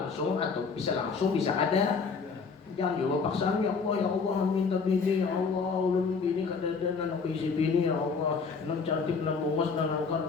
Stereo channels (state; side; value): quieter; right; 5.1 dB